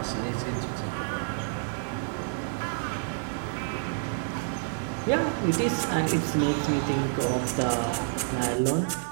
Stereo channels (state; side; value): silent; left; 59 dB below the other